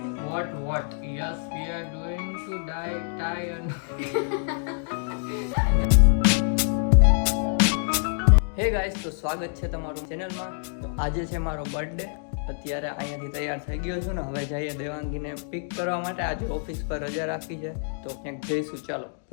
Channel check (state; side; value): silent; right; 61 dB below the other